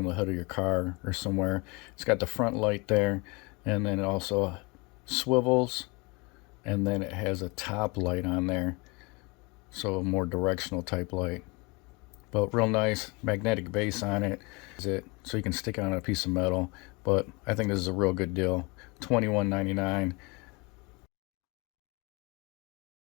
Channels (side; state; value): right; quieter; 27.7 dB